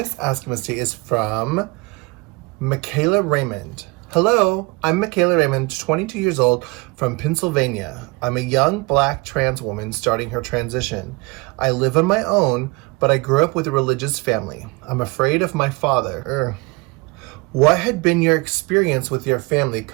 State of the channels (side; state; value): left; quieter; 26.5 dB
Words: Ask Misty is from Mikayla Raymond. Hello, I'm Mikayla Raymond, 22 years old, from Pennsylvania. I'm a young black trans woman starting her transition. I live on my own, but I grew up with a religious family. I'm afraid of my father. What had been your experience with your family